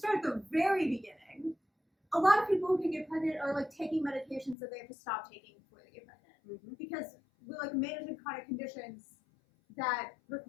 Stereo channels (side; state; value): right; drops out; at 4.5 s